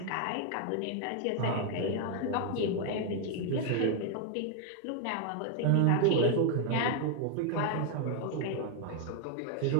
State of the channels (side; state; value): both; different; correlation 0.01